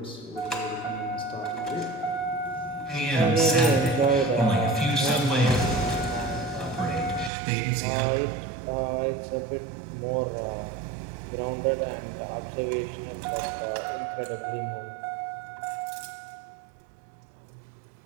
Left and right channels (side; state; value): left; drops out; at 7.3 s